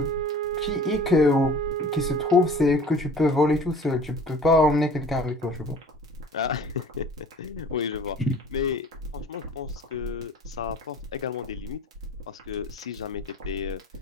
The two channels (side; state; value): both; normal; correlation 0.46